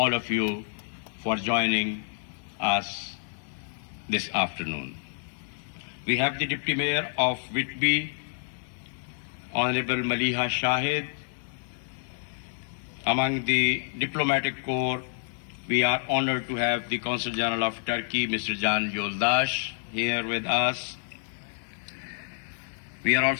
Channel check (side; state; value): right; silent; 59 dB below the other